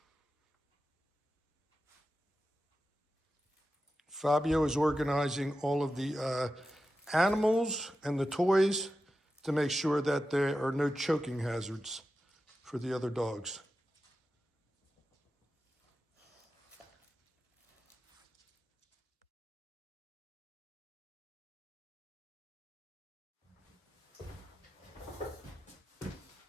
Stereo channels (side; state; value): both; normal; correlation 0.92